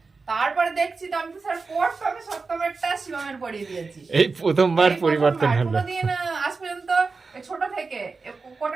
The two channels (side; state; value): left; quieter; 4.3 dB